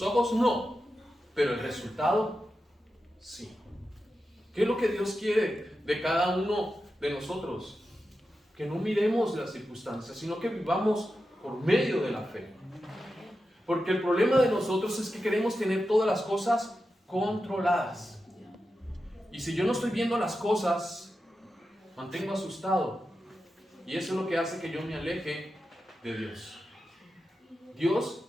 ojos no, pero el resultado sí. ¿Qué es lo que Dios quiere de cada uno de nosotros? Que no miremos las circunstancias, sino que vivamos por medio de la fe. Porque el problema de nosotros es que queremos tener todas las cosas controladas. Y si yo no estoy viendo las cosas, mantengo asustado. Y eso es lo que hace que yo me aleje de Dios. Dios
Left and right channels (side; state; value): both; normal; correlation 0.90